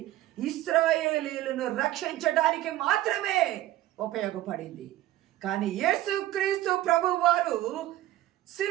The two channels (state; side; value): quieter; left; 14.9 dB